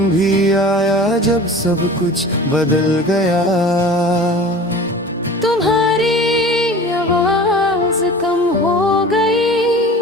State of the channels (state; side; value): normal; both; correlation 0.39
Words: भी आया जब सब कुछ बदल गया। तुम्हारी आवाज कम हो गई,